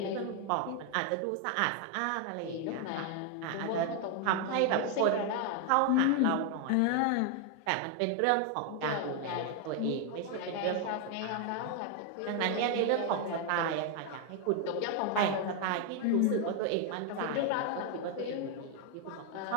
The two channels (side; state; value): both; different; correlation 0.01